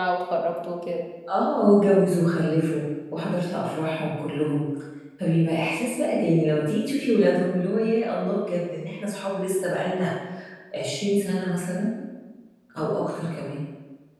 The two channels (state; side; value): identical; both; correlation 1.00